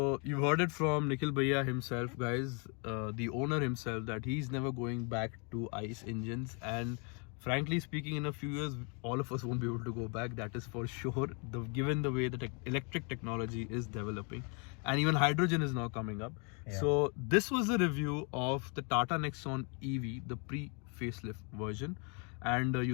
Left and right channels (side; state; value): right; quieter; 36.0 dB